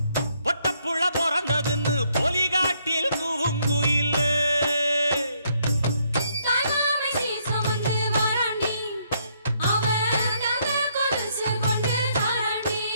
பொட்டப்புள்ள பிறந்ததுன்னு பொலிகாட்டில் கூங்குயில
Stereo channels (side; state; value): both; inverted; correlation -0.71